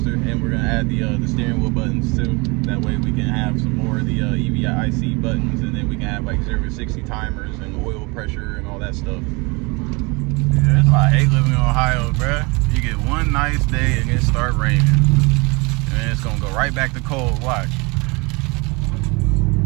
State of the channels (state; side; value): quieter; left; 27.7 dB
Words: and we're going to add the steering wheel buttons too. That way we can have some more of the EVIC buttons, and then we can have like 0 to 60 timers and oil pressure and all that stuff. Yeah, that's why I hate living in Ohio, bruh. You get one nice day and it start raining. And it's gonna go right back to cold. Watch.